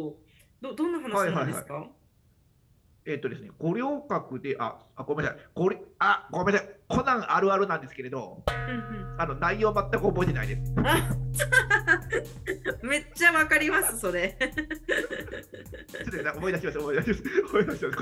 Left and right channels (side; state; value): both; identical; correlation 1.00